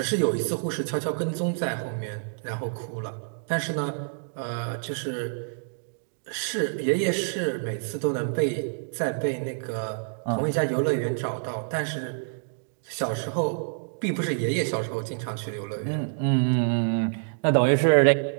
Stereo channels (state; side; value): silent; left; digital silence